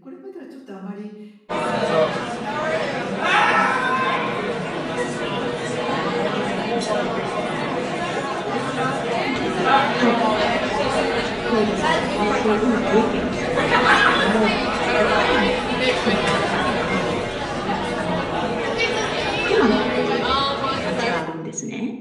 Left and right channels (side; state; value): both; identical; correlation 1.00